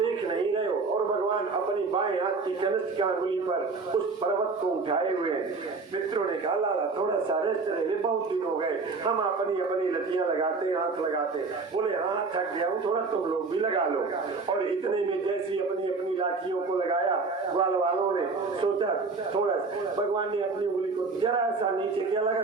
नहीं रहे हो। और भगवान अपनी बाएं हाथ की कनिष्ठ अंगुली पर उस पर्वत को उठाए हुए हैं। मित्रों ने कहा लाला थोड़ा सा रेस्ट ले ले, बहुत दिन हो गए, हम अपनी अपनी लतियां लगाते, हाथ लगाते। बोले हाँ थक गया हूँ, थोड़ा तुम लोग भी लगा लो। और इतने में जैसी अपनी अपनी लाठियों को लगाया, ग्वाल वालों ने सोचा थोड़ा, भगवान ने अपनी उंगली को जरा सा नीचे किया, लगा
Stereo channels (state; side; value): quieter; left; 4.2 dB